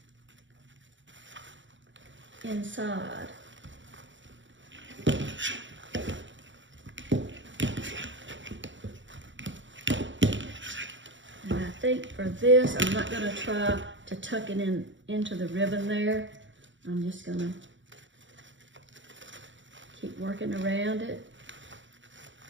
inside. And I think for this, I'm not gonna try to tuck it into the ribbon there. I'm just gonna keep working around it.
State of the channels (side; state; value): left; late; 0.55 ms